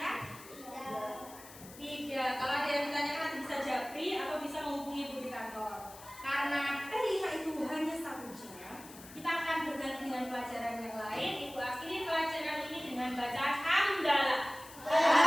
Tidak. Kalau ada yang ditanyakan nanti bisa japri atau bisa menghubungi Ibu di kantor. Karena P5 itu hanya 1 jam, kita akan berganti dengan pelajaran yang lain. Ibu akhiri pelajaran ini dengan bacaan hamdalah.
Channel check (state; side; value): noise; left; hiss, 17 dB below the sound